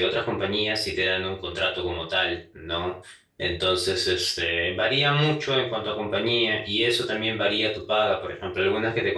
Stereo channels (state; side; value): identical; both; correlation 1.00